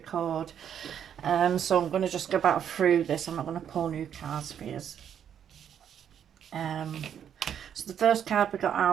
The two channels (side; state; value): left; quieter; 8.9 dB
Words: So I'm going to just go back through this. I'm not going to pull new cards for you. So the first card we got